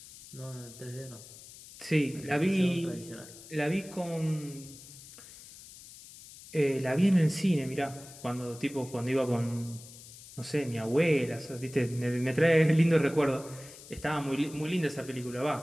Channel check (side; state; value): left; noise; hiss, 18 dB below the sound